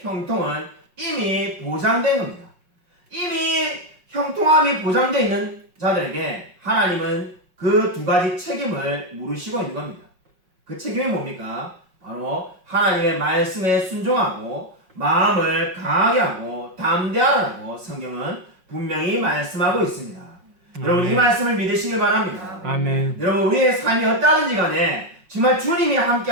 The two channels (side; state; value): left; late; 5.5 ms